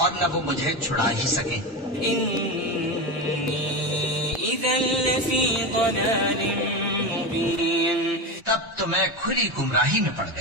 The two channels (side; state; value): both; normal; correlation 0.20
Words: اور نہ وہ مجھے چھڑا ہی سکے. إني إذا لفي ضلال مبين. تب تو میں کھلی گمراہی میں پڑ